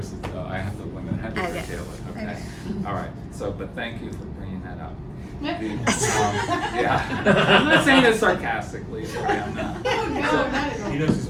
so I have to limit, I have to Okay. curtail it, okay? Okay. All right, so, but thank you for bringing that up. Yeah, I'm not saying it sarcastically, I'm not. He knows he's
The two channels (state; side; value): identical; both; correlation 1.00